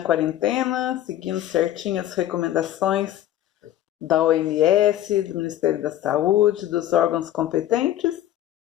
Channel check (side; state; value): right; quieter; 12.7 dB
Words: quarentena, seguindo certinho as recomendações da OMS, do Ministério da Saúde, dos órgãos competentes?